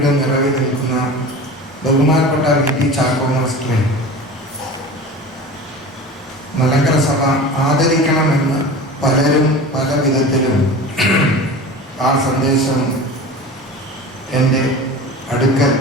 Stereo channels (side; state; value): both; normal; correlation 0.34